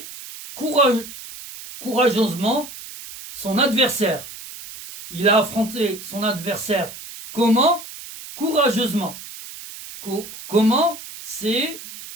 courageusement son adversaire. Il a affronté son adversaire comment? Courageusement. Comment?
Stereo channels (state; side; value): noise; right; hiss, 14 dB below the sound